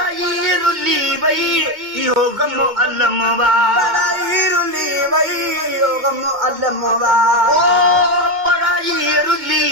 रुली वई इहो गम अलम वा पढ़ाई रुली वई इहो गम अलम वा ओ पढ़ाई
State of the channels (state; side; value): late; left; 2.1 ms